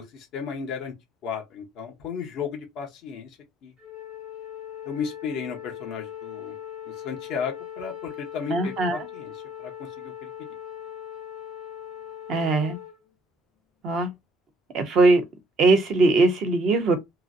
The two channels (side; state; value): both; normal; correlation 0.65